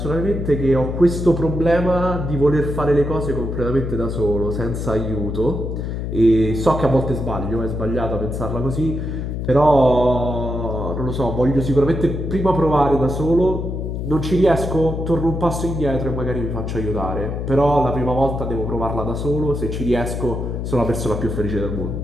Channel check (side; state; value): left; noise; hum, 4 dB below the sound